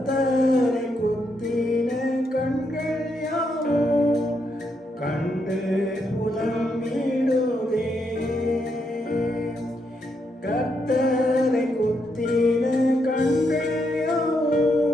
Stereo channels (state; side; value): normal; both; correlation 0.79